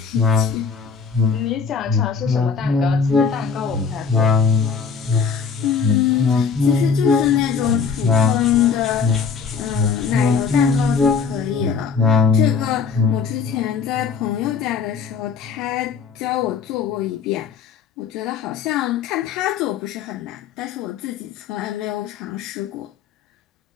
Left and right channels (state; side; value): quieter; right; 5.8 dB